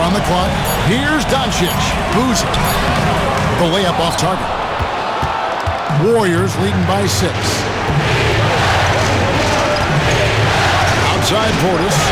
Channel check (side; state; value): both; identical; correlation 1.00